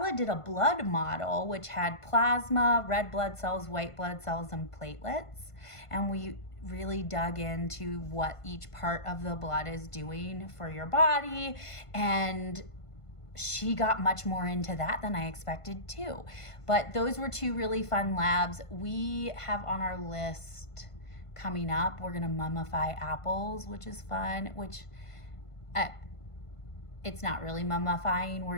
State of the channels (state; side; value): late; right; 1.5 ms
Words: did a blood model, which had plasma, red blood cells, white blood cells, and platelets. And we really dug into what each part of the blood is doing for your body, and she got much more into that than I expected too. But those were two really fun labs. We have on our list coming up, we're gonna mummify apples, which is fun, which it's not really mummifying,